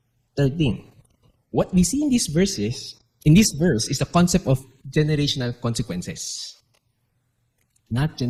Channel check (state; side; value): identical; both; correlation 1.00